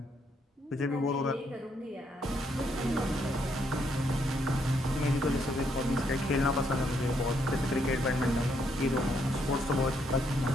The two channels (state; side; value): normal; both; correlation 0.74